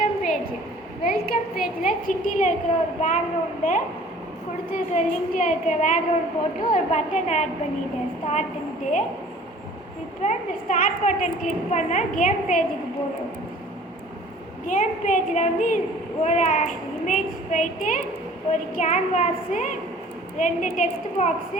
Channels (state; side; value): normal; both; correlation 0.49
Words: பேஜில் சிட்டியில் இருக்கிற ஒரு பேக்ரவுண்டை கொடுத்துருக்கிற லிங்கில் இருக்கிற பேக்ரவுண்ட் போட்டு ஒரு பட்டன் ஆட் பண்ணிட்டேன் ஸ்டார்ட்டுன்ட்டு. இப்போ இந்த ஸ்டார்ட் பட்டன் கிளிக் பண்ணால் கேம் பேஜுக்கு போகும். கேம் பேஜில் வந்து ஒரு இமேஜ் போயிட்டு ஒரு கேன்வாஸு, 2 டெக்ஸ்ட்